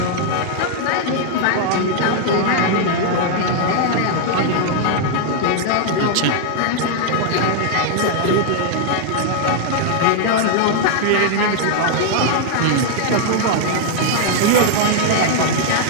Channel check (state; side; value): different; both; correlation 0.00